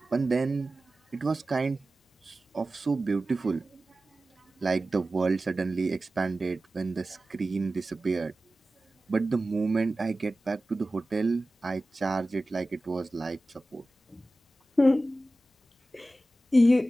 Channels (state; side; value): normal; both; correlation 0.95